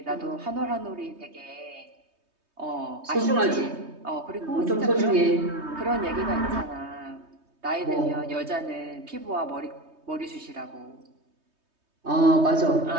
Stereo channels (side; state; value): left; late; 3.2 ms